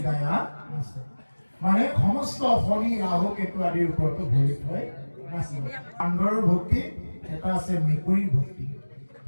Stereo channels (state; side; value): inverted; both; correlation -1.00